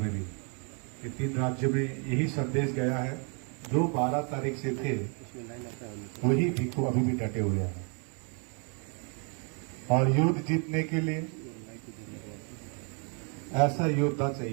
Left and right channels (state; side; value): quieter; left; 37.5 dB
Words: भी, ये 3 राज्यों में यही संदेश गया है। जो 12 तारीख से थे वही भिक्खु अभी भी डटे हुए हैं और युद्ध जीतने के लिए ऐसा योद्धा